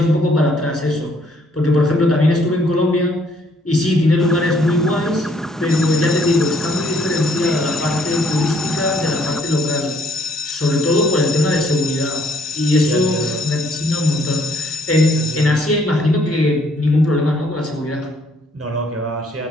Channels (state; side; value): normal; both; correlation 0.65